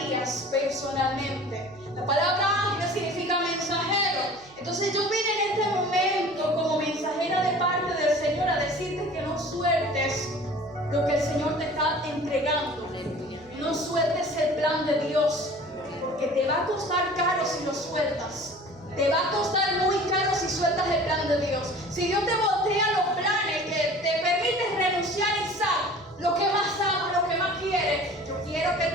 personalmente. La palabra ángel significa mensajero. Entonces yo vine en este momento como mensajera de parte del Señor a decirte que no sueltes lo que el Señor te está entregando. No sueltes el plan de Dios, porque te va a costar caro si lo sueltas. Te va a costar muy caro si sueltas el plan de Dios. Si Dios te voltea los planes, que te permites renunciar y Isaac, lo que más amas, lo que más quieres, yo quiero que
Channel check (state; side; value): noise; right; hum, 26 dB below the sound